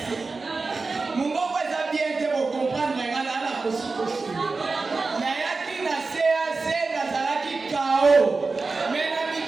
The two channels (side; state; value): left; quieter; 4.0 dB